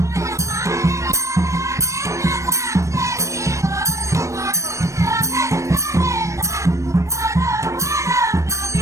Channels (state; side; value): late; left; 0.15 ms